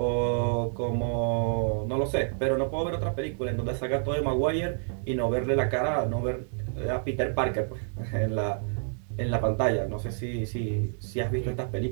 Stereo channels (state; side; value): silent; left; digital silence